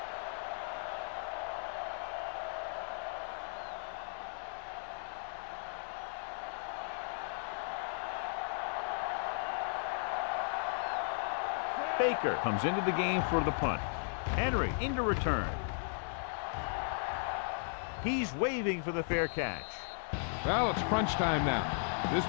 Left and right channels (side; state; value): right; silent; 54 dB below the other